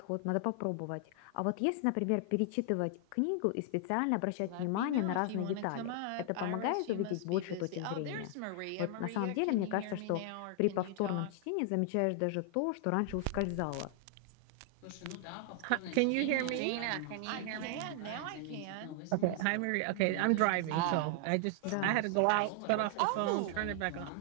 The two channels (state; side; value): different; both; correlation 0.00